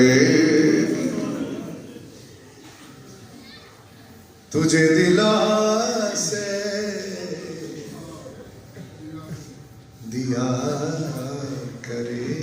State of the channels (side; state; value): both; identical; correlation 1.00